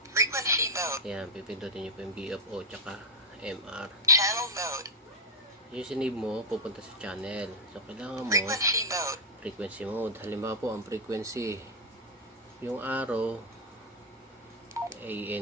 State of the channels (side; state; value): both; normal; correlation -0.01